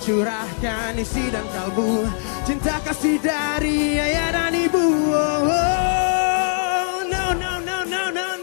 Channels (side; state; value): right; silent; digital silence